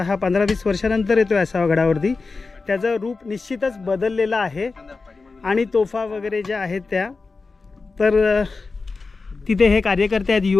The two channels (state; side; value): quieter; right; 4.1 dB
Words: हा 15-20 वर्षानंतर येतो आहे आसावा गडावरती. त्याचं रूप निश्चितच बदललेलं आहे आणि तोफा वगैरे ज्या आहेत त्या, तर तिथे हे कार्यकर्ते आहेत